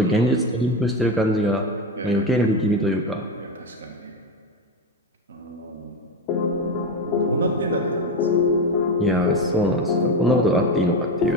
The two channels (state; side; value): normal; both; correlation 0.16